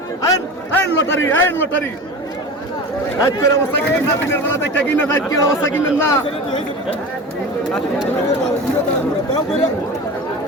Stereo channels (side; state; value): both; normal; correlation 0.31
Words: আই লটারি আজকের অবস্থা কি না দিনের বেলা দেখতে কিনা আজকের অবস্থা কিনেন না